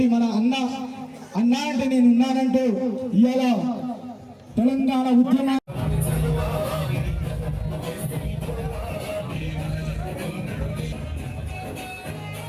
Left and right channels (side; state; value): both; identical; correlation 1.00